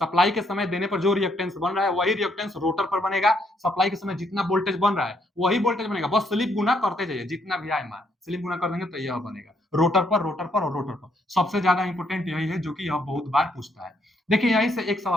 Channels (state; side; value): normal; both; correlation 0.72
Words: के समय देने पर जो रिएक्टेंस बन रहा है वही रिएक्टेंस रोटर पर बनेगा। सप्लाई के समय जितना वोल्टेज बन रहा है वही वोल्टेज बनेगा, बस स्लिप गुना करते जाइए, जितना भी आए मान स्लिप गुना कर देंगे तो यह बनेगा रोटर पर, रोटर पर और रोटर पर। सबसे ज्यादा इंपॉर्टेंट यही है जो कि यह बहुत बार पूछता है। देखिए यहीं से एक